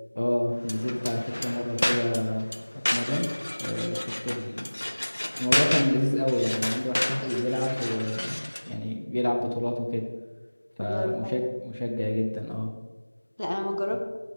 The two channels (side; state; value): both; inverted; correlation -1.00